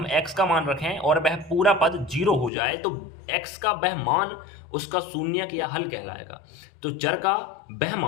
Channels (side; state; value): right; drops out; at 2.5 s